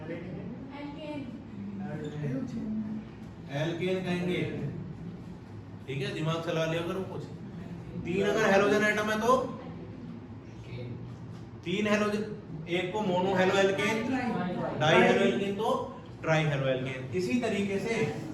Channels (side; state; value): both; identical; correlation 1.00